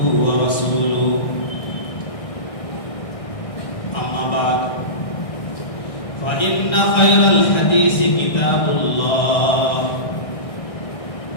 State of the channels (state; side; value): late; right; 1.6 ms